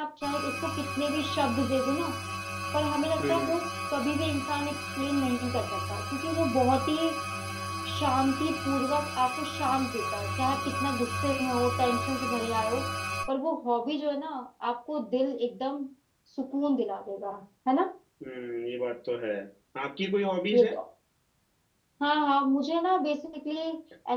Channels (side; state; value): both; identical; correlation 1.00